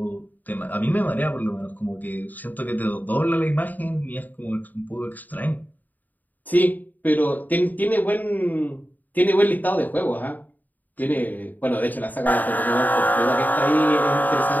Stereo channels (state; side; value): late; right; 0.084 ms